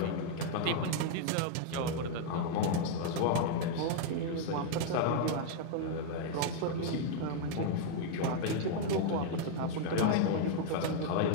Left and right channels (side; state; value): both; different; correlation 0.00